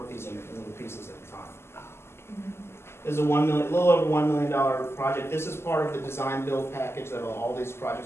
these in little pieces at a time. This is a little over $1 million project. This is part of the design build package that all these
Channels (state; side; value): late; right; 0.12 ms